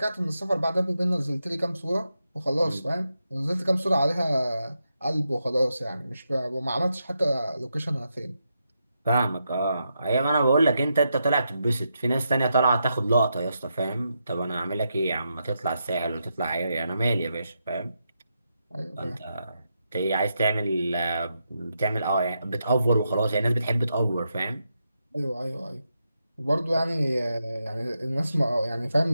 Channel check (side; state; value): both; inverted; correlation -0.84